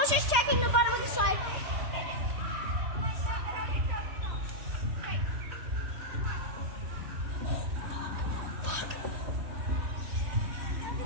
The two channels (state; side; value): late; left; 3.1 ms